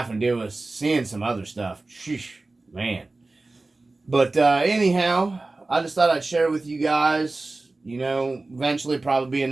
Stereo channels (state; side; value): quieter; left; 3.3 dB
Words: to deal with seeing some other stuff, sheesh, man. But anyhow, I just thought I'd share with you guys. You know, eventually probably be